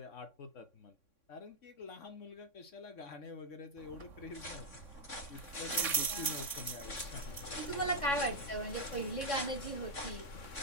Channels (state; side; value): late; right; 3.6 ms